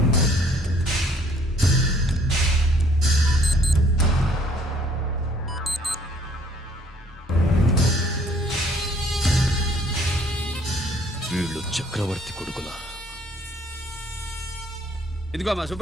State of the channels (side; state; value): both; normal; correlation 0.60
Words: వీళ్ళు చక్రవర్తి కొడుకులా. ఇదిగో మా